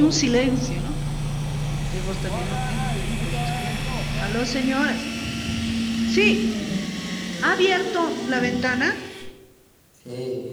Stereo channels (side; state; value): both; identical; correlation 1.00